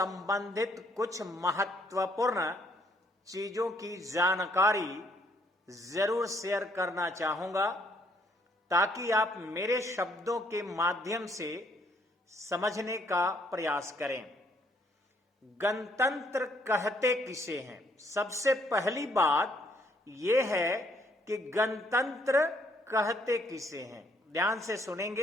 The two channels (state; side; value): normal; both; correlation 0.67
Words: कुछ महत्वपूर्ण चीजों की जानकारी जरूर शेयर करना चाहूंगा, ताकि आप मेरे शब्दों के माध्यम से समझने का प्रयास करें। गणतंत्र कहते किसे हैं? सबसे पहली बात यह है कि गणतंत्र कहते किसे हैं। ध्यान से